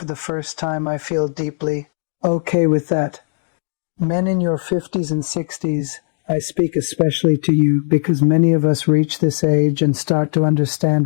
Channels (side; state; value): right; silent; digital silence